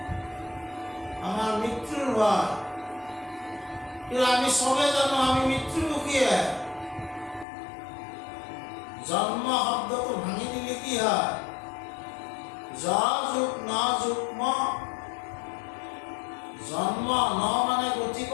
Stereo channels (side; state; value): right; drops out; at 7.5 s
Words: আমাৰ মৃত্যুৰ ভয়। কিন্তু আমি সবে জানো আমি মৃত্যুমুখীয়ে। জন্ম শব্দটো ভাঙি দিলে কি হয়? জ যুগ ন যুগ ম। জন্ম ন মানে